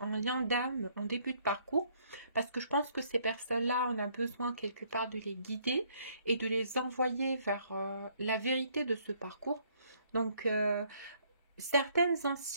en lien d'âme en début de parcours. Parce que je pense que ces personnes-là, on a besoin quelque part de les guider et de les envoyer vers la vérité de ce parcours. Donc, certaines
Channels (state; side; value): inverted; both; correlation -0.66